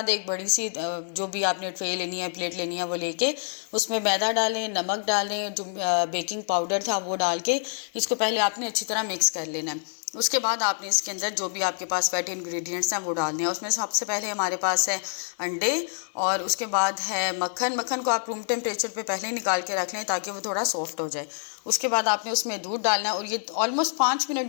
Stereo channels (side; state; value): right; silent; digital silence